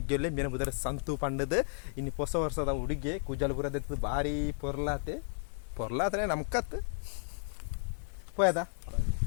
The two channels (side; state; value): right; silent; digital silence